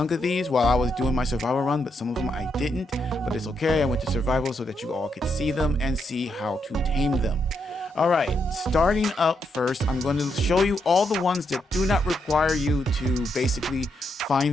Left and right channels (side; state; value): both; normal; correlation 0.80